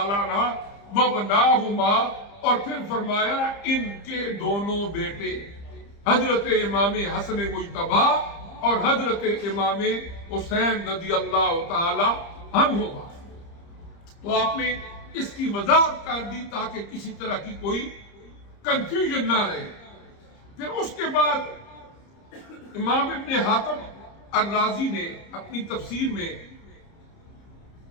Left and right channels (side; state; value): right; late; 30 ms